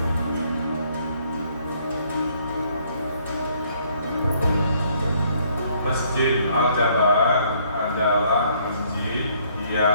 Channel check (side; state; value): both; inverted; correlation -0.65